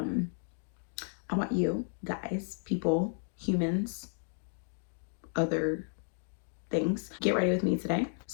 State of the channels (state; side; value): silent; right; 56 dB below the other